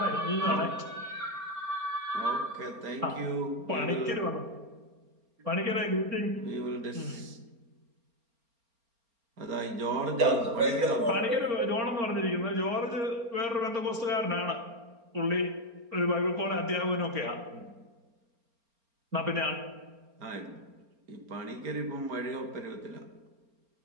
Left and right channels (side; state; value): left; late; 4.3 ms